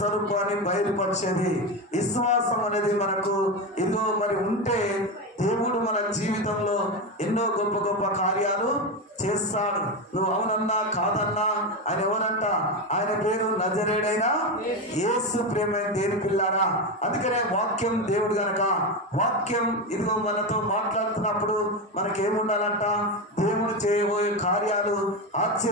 బయలుపరిచేది. విశ్వాసం అనేది మనకు ఇదిగో మరి ఉంటే దేవుడు మన జీవితంలో ఎన్నో గొప్ప గొప్ప కార్యాలు చేస్తాడు. నువ్వు అవునన్నా కాదన్నా ఆయన ఎవరంట? ఆయన పేరు నజరేయుడైన యేసు. ప్రేమైన దేవుని పిల్లారా, అందుకనే వాక్యం దేవుడు గనక వాక్యం ఇదిగో మనతో మాట్లాడుతున్నప్పుడు మనకేముండాలంట? దేవుడు చేయబోయే కార్యాలు,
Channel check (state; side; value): normal; both; correlation 0.15